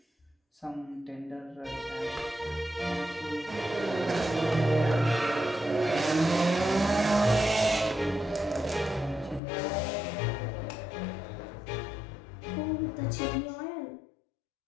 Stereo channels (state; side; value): drops out; right; at 9.4 s